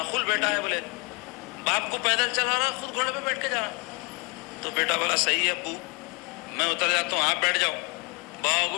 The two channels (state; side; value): quieter; right; 29.5 dB